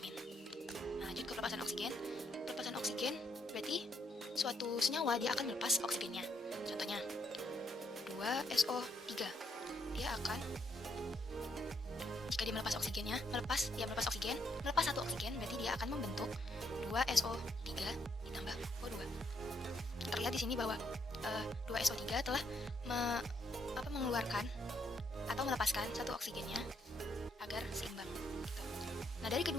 Nah, lanjut ke pelepasan oksigen. Pelepasan oksigen berarti suatu senyawa dia akan melepas oksigennya. Contohnya 2SO3. Dia akan, jika dia melepas oksigennya, melepas satu oksigen, berarti dia akan membentuk 2SO3 ditambah O2. Terlihat di sini bahwa 2SO3 telah mengeluarkan atau melepaskan satu oksigennya agar seimbang. Gitu. Nah, dari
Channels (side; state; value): both; normal; correlation 0.74